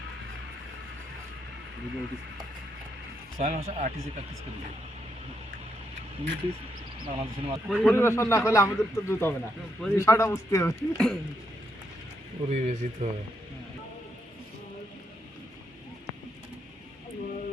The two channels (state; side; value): normal; both; correlation 0.78